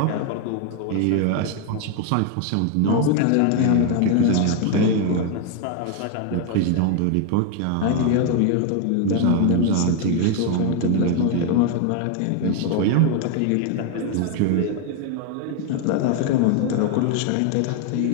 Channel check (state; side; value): different; both; correlation 0.01